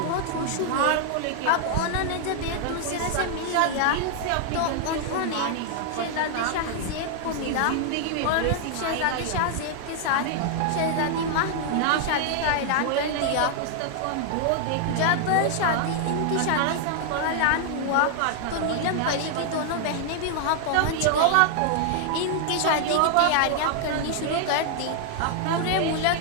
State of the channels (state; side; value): different; both; correlation 0.00